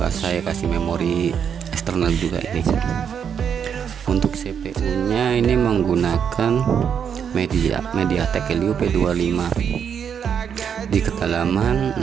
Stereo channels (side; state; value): left; quieter; 7.7 dB